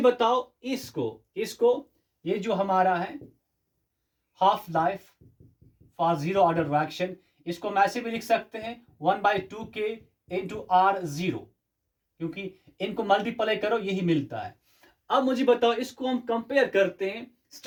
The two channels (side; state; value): both; identical; correlation 1.00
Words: बताओ इसको ये जो हमारा है half life for zero order reaction, इसको हम ऐसे भी लिख सकते हैं 1/2k इंटू R0, क्योंकि इनको मल्टीप्लाई करो यही मिलता है. अब मुझे बताओ इसको हम कंपेयर करते हैं